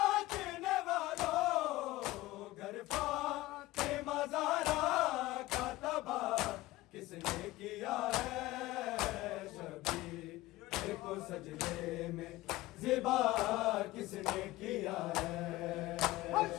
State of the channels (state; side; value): quieter; right; 18.1 dB